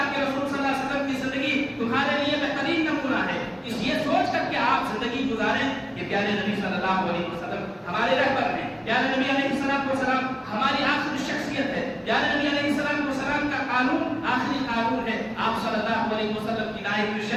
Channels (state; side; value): identical; both; correlation 1.00